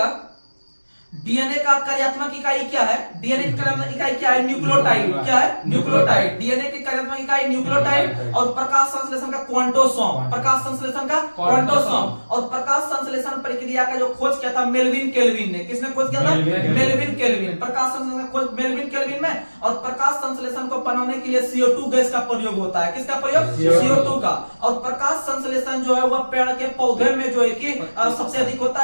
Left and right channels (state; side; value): inverted; both; correlation -1.00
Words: डीएनए का कार्यात्मक इकाई क्या है? डीएनए की कार्यात्मक इकाई क्या है? न्यूक्लियोटाइड। क्या है? न्यूक्लियोटाइड। डीएनए की कार्यात्मक इकाई न्यूक्लियोटाइड। और प्रकाश संश्लेषण का क्वांटोसोम। प्रकाश संश्लेषण का क्वांटोसोम। और प्रकाश संश्लेषण प्रक्रिया का जो खोज किया था मेलविन केल्विन ने। किसने खोज किया था? Melvin kelvin. प्रकाश संश्लेषण का खोज मेलविन केल्विन में। और प्रकाश संश्लेषण को बनाने के लिए CO2 गैस का प्रयोग होता है। किसका प्रयोग? CO2 का। और प्रकाश संश्लेषण जो है वह पेड़ के पौधे में जो है कि सबसे अधिक होता